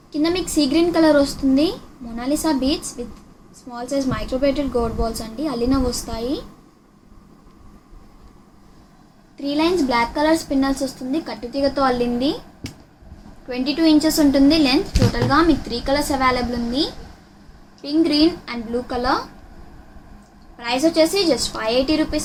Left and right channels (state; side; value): identical; both; correlation 1.00